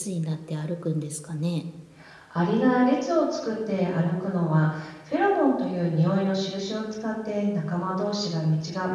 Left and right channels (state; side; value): identical; both; correlation 1.00